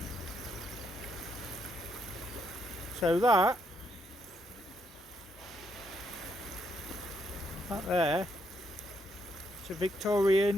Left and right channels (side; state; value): both; normal; correlation 0.76